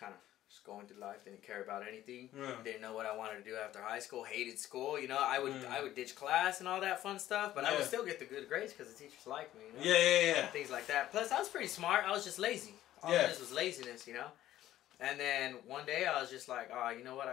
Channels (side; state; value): right; quieter; 13.4 dB